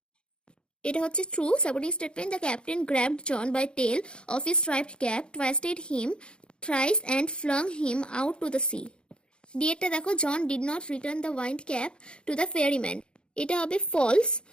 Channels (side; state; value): right; late; 0.053 ms